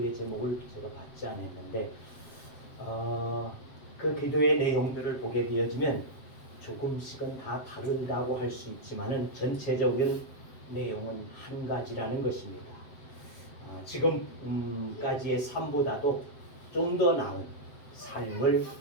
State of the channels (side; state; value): right; late; 7.6 ms